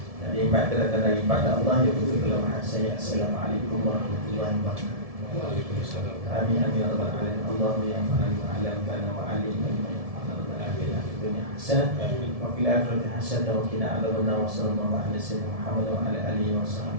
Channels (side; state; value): left; late; 1.7 ms